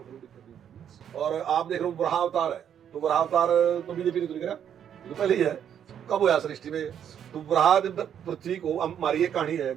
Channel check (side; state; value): left; quieter; 9.1 dB